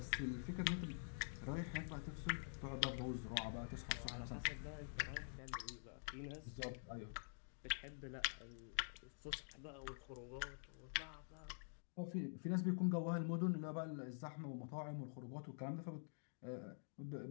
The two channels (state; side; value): silent; right; digital silence